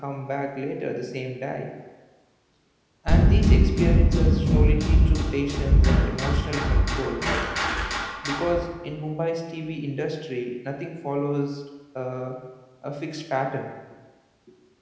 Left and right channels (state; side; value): identical; both; correlation 1.00